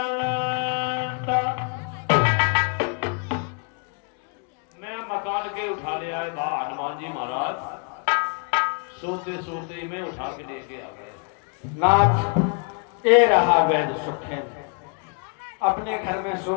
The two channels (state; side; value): quieter; right; 39.8 dB